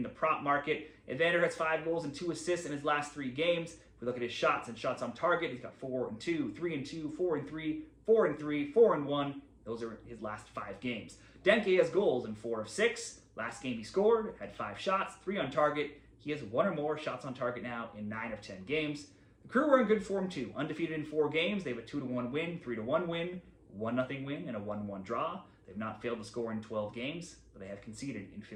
the prop market. Evander has 5 goals and 2 assists in his last 3 games. If we look at his shots and shots on target, he's got 4-2, 3-2, 4-3, 4-3, 4-1. Those are his last 5 games. Denke has goals in 4 of 6. Last game he scored, had 5 shots, 3 on target. He has 1 or more shots on target now in 9 of 10 games. The Crew are in good form too. Undefeated in 4 games. They have a 2-1 win, 3-1 win, 1-0 win, and a 1-1 draw. They've not failed to score in 12 games, but they have conceded in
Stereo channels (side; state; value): both; identical; correlation 1.00